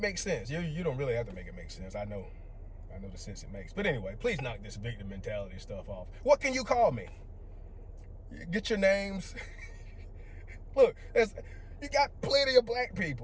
sense. You don't really have to make it make sense. I know the sense it makes. But anyway, please knock this victim mentality stuff off. What can you call me? Get your names. Look, you got plenty of black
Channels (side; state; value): both; identical; correlation 1.00